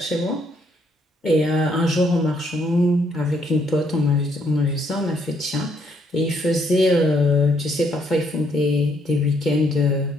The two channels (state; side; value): normal; both; correlation 0.71